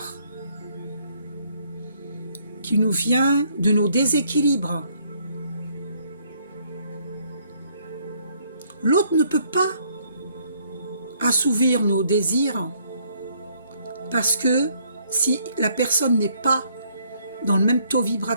qui nous vient de nos déséquilibres. L'autre ne peut pas assouvir nos désirs parce que si la personne n'est pas dans le même taux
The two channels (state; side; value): inverted; both; correlation -0.67